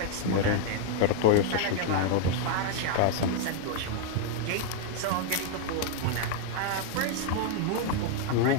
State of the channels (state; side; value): different; both; correlation 0.00